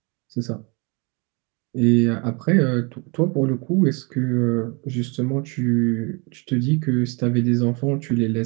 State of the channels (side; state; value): left; quieter; 30.8 dB